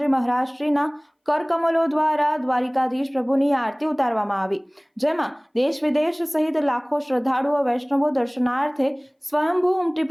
મહારાજ શ્રીના કરકમલો દ્વારા દ્વારિકાધીશ પ્રભુની આરતી ઉતારવામાં આવી। જેમાં દેશ વિદેશ સહિત લાખો શ્રદ્ધાળુઓ વૈષ્ણવો દર્શનાર્થે સ્વયંભૂ ઉમટી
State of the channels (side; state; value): both; identical; correlation 1.00